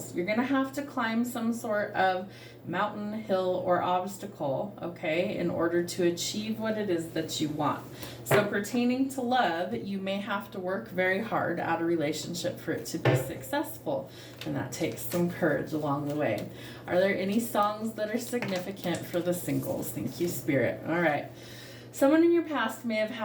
You're going to have to climb some sort of mountain, hill, or obstacle, okay, in order to achieve what it is that you want. So pertaining to love, you may have to work very hard at a relationship for it to be successful. And that takes some courage along the way. Are there any songs that are significant for the singles? Thank you, Spirit. All right. Someone in your past may have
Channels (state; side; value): identical; both; correlation 1.00